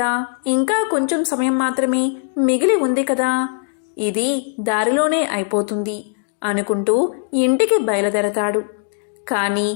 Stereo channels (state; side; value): silent; right; digital silence